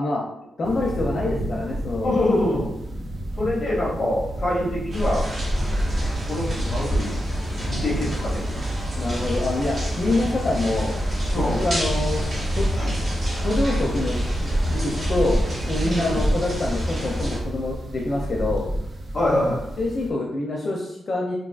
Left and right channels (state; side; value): normal; both; correlation 0.88